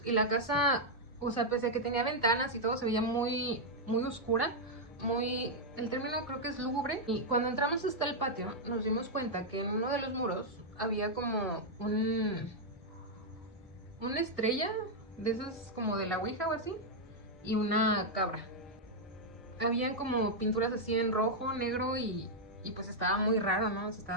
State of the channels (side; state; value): both; normal; correlation -0.03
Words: y la casa, o sea, pese a que tenía ventanas y todo, se veía muy, muy oscura, muy, el término creo que es lúgubre. Y cuando entramos hasta el patio nos dimos cuenta que en uno de los muros había como una estrella de esas como de la ouija o así, y una cabra. Habían como pinturas así en rojo, negro y pues estaba muy raro, ¿no? O sea,